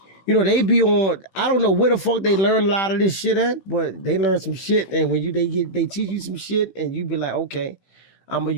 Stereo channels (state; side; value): late; right; 16 ms